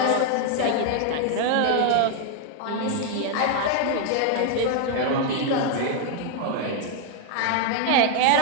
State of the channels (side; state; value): both; different; correlation 0.00